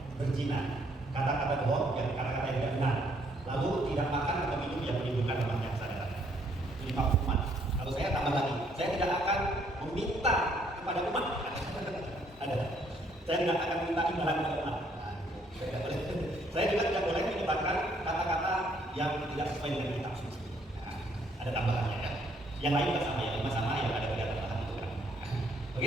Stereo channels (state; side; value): normal; both; correlation 0.67